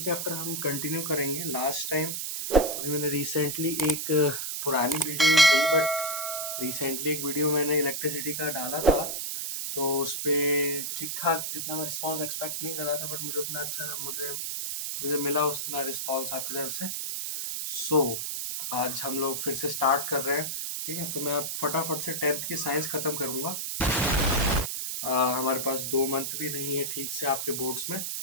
हम कंटिन्यू करेंगे। लास्ट टाइम अभी मैंने रिसेंटली एक पुरानी वीडियो नहीं सही बट रिसेंटली एक वीडियो मैंने इलेक्ट्रिसिटी का डाला था, तो उस पर ठीक ठाक जितना मैं रिस्पॉन्स एक्सपेक्ट नहीं कर रहा था बट मुझे उतना अच्छा मुझे मुझे मिला उतना रिस्पॉन्स आपकी तरफ से। सो आज हम लोग फिर से स्टार्ट कर रहे हैं। ठीक है, तो मैं अब फटाफट से 10th की साइंस खत्म करूंगा। हमारे पास 2 मंथ भी नहीं है ठीक से आपके बोर्ड्स में।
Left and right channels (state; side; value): noise; right; hiss, 3 dB below the sound